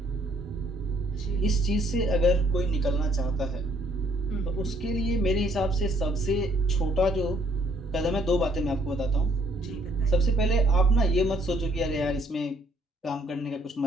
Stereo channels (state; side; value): normal; both; correlation 0.66